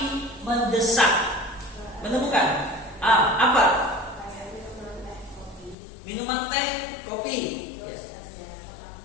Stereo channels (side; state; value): right; drops out; at 5.8 s